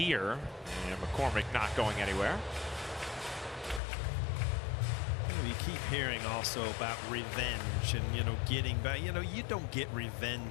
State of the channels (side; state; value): right; drops out; at 3.8 s